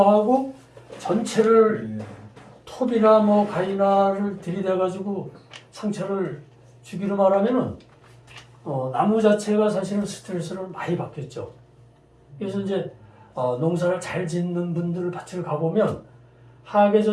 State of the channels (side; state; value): both; identical; correlation 1.00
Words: 전체를 톱이나 뭐 가위나를 들이대가지고 상처를 주기로 말하면은 나무 자체가 사실은 스트레스를 많이 받겠죠. 그래서 이제 농사를 잘 짓는 분들 밭을 가보면